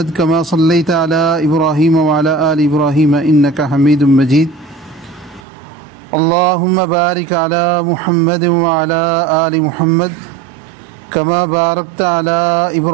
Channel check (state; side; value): drops out; left; at 5.4 s